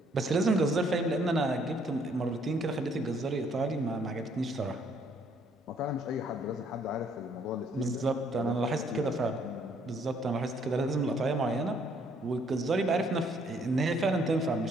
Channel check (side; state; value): both; normal; correlation 0.66